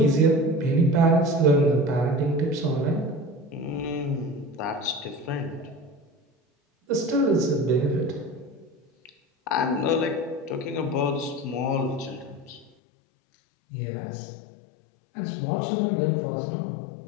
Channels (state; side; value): drops out; right; at 12.7 s